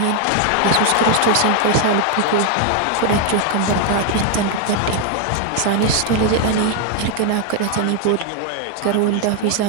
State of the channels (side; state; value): both; different; correlation 0.01